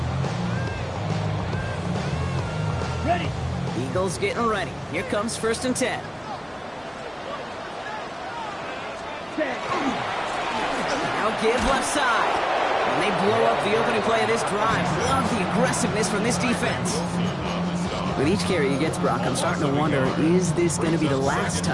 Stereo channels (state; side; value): identical; both; correlation 1.00